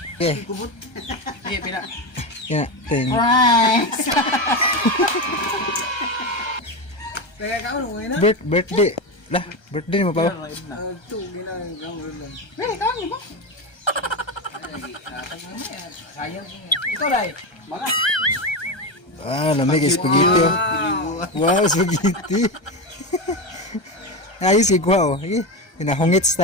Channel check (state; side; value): late; right; 1.3 ms